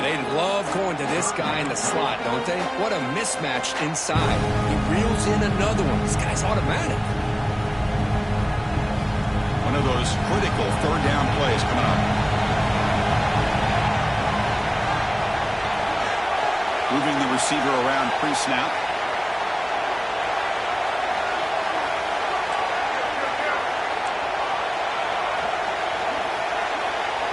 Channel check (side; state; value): both; identical; correlation 1.00